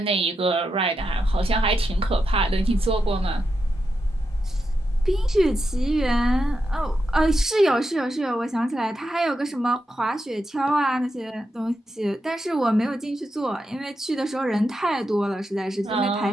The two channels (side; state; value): both; normal; correlation 0.86